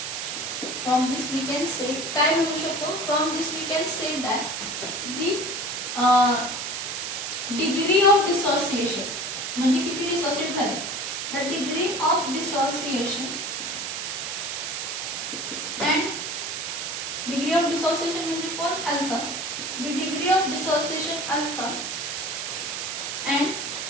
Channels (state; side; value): noise; right; hiss, 4 dB below the sound